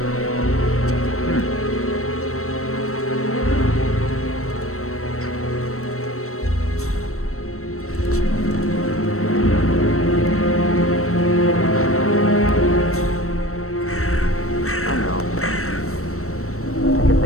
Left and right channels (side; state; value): right; late; 0.63 ms